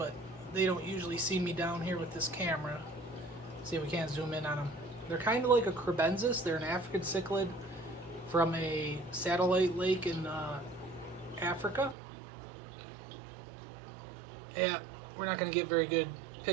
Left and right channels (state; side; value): drops out; left; at 12.0 s